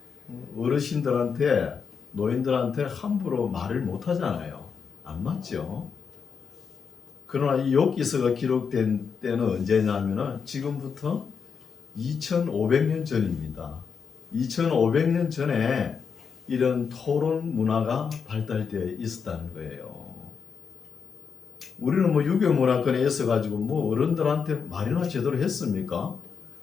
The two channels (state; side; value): quieter; right; 6.2 dB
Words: 어르신들한테 노인들한테 함부로 말을 못 하잖아요. 안 맞죠? 그러나 이 욥기서가 기록된 때는 언제냐면은 지금부터 2500년 전입니다. 2500년 전에 이런 토론 문화가 발달되어 있었다는 거예요. 우리는 뭐 유교 문화권에 있어가지고 뭐 어른들한테 말이나 제대로 했습니까?